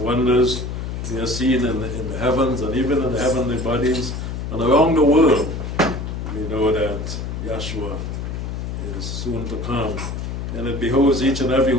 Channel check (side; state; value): left; noise; hum, 5 dB below the sound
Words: we are seeing in the heavens and even in the heavenly bodies and around the world, we know that Yahshua is soon to come. And it behoves each and every